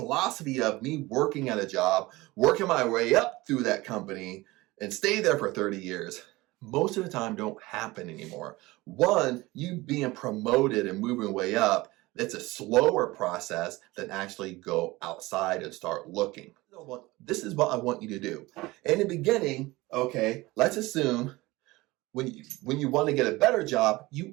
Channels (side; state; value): left; quieter; 20.5 dB